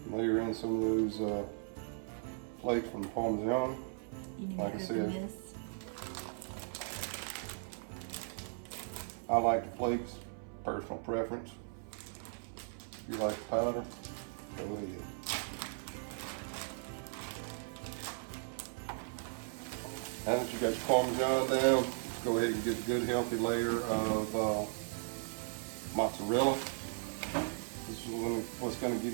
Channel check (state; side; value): silent; left; 53 dB below the other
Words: Layer in some of those flakes from the Parmesan. You need Like I to said, open this. I like the flakes, personal preference. If you like the powder, go ahead. Now that you got your Parmesan down, go ahead and get a good healthy layer of mozzarella. This is what's going to